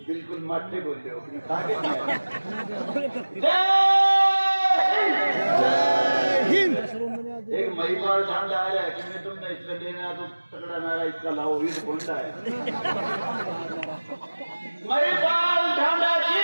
बिल्कुल माथे बोल रहे हो आगे एक महिपाल ठांड आ रहा है कि मैं तुमने इसका देना तो तगड़ा नारा इसका लाओ ये तो बोलता है महिपाल ठांडा जी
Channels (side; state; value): both; inverted; correlation -1.00